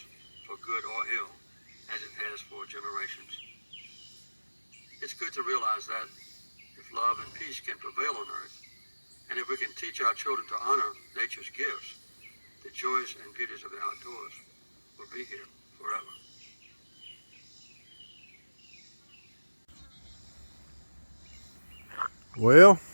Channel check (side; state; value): both; inverted; correlation -1.00